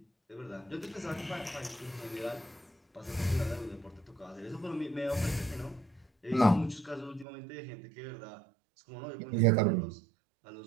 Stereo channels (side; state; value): left; drops out; at 7.2 s